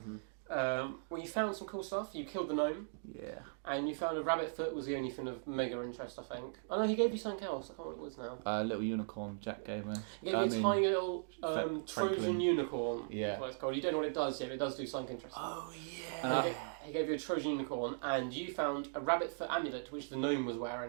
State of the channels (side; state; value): left; silent; digital silence